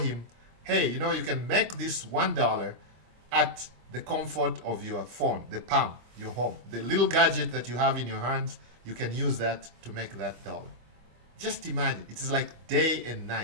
hey, you know, you can make this $1 at the comfort of your phone, the palm, your home. The little gadget that you have in your hands, you can use that to make that dollar. Just imagine, it is like day and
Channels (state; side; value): late; left; 25 ms